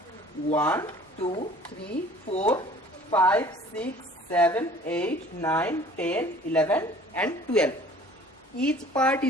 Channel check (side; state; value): both; normal; correlation 0.50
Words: 1, 2, 3, 4, 5, 6, 7, 8, 9, 10, 11 and 12. Each part